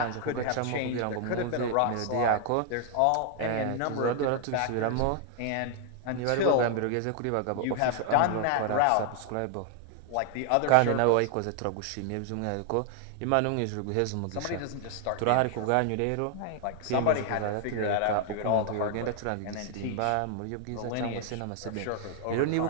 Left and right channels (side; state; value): both; different; correlation 0.00